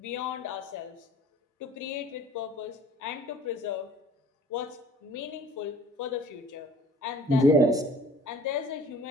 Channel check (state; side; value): normal; both; correlation 0.50